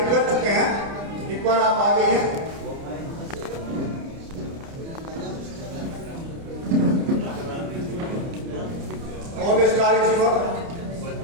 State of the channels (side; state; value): left; late; 30 ms